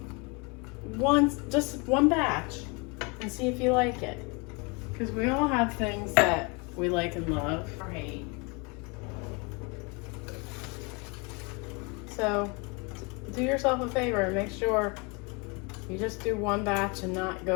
just one batch and see if you like it. Because we all have things that we like and love or hate. So do yourself a favor and make sure you just do one batch and not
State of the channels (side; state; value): right; quieter; 30.5 dB